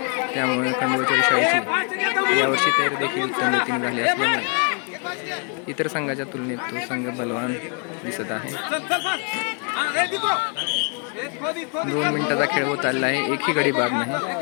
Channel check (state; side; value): quieter; right; 37.8 dB